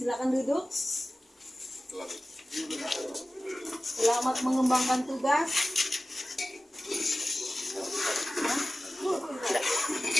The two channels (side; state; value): both; normal; correlation 0.95